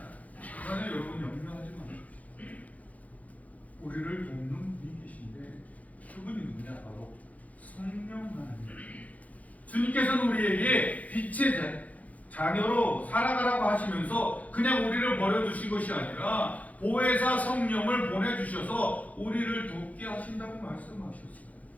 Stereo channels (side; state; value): right; late; 0.072 ms